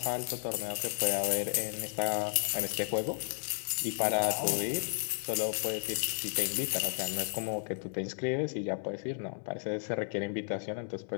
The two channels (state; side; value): silent; right; 56 dB below the other